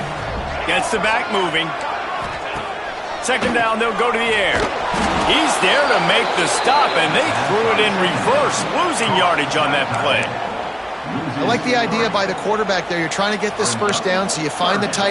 Gets the back moving. Second down, they'll go to the air. He's there to make the stop, and they threw it in reverse, losing yardage on that play. I like the idea by the quarterback there. You're trying to get this first down, so you find the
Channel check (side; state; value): both; identical; correlation 1.00